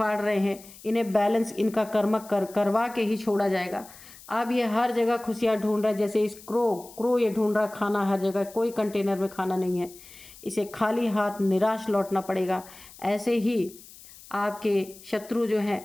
रहे हैं, इन्हें बैलेंस इनका कर्म करवा के ही छोड़ा जाएगा। अब ये हर जगह खुशियाँ ढूंढ रहा है, जैसे इस क्रो ये ढूंढ रहा खाना हर जगह, कोई कंटेनर में खाना नहीं है, इसे खाली हाथ निराश लौटना पड़ेगा। ऐसे ही आपके शत्रु जो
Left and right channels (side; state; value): left; noise; hiss, 20 dB below the sound